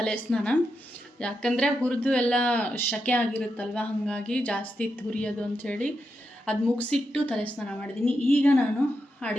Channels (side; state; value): both; normal; correlation 0.86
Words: ಸ್ನಾನ. ಯಾಕಂದರೆ ಹುರಿದು ಎಲ್ಲ ಶಕೆ ಆಗಿರುತ್ತಲ್ವ, ಹಾಗಾಗಿ ಜಾಸ್ತಿ ಇತ್ತು ಹುರಿಯೋದು ಅಂಥೇಳಿ ಅದು ಮುಗಿಸಿಟ್ಟು ತಲೆ ಸ್ನಾನ ಮಾಡಿದ್ದೀನಿ. ಈಗ ನಾನು